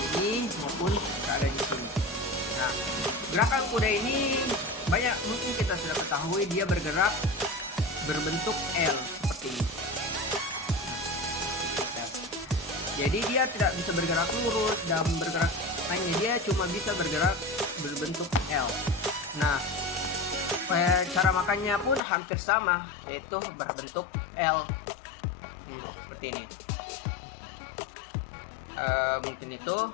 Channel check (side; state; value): right; drops out; at 22.0 s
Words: maupun berada di sini. Nah, gerakan kuda ini banyak mungkin kita sudah ketahui, dia bergerak berbentuk L seperti ini. Jadi dia tidak bisa bergerak lurus dan bergerak lainnya, dia cuma bisa bergerak berbentuk L. Nah, cara makannya pun hampir sama, yaitu berbentuk L. Seperti ini. Mungkin itu.